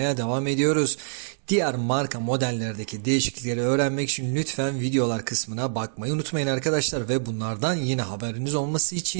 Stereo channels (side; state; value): left; silent; digital silence